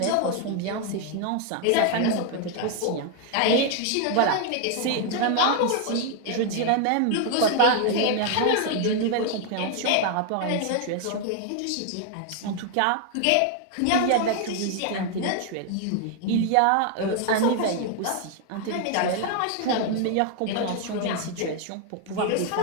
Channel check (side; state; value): both; different; correlation 0.00